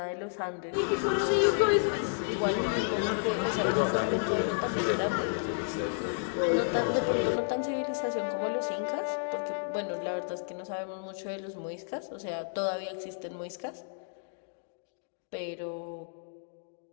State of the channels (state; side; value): silent; right; digital silence